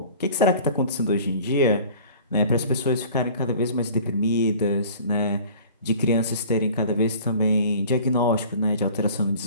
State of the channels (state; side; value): inverted; both; correlation -0.46